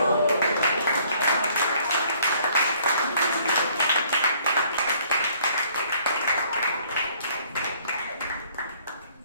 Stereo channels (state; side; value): inverted; both; correlation -0.61